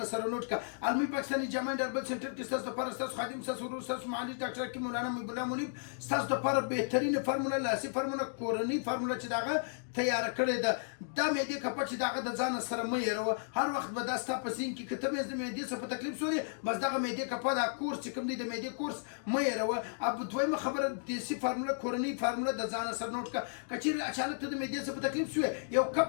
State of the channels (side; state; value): right; silent; digital silence